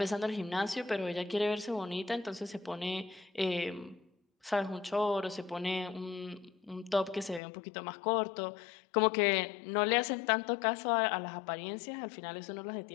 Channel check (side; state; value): right; drops out; at 7.4 s